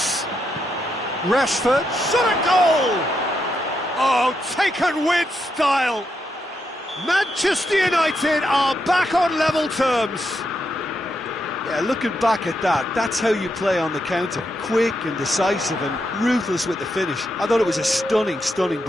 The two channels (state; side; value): normal; both; correlation 0.82